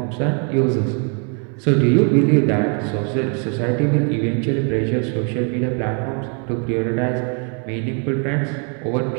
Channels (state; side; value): quieter; left; 39.9 dB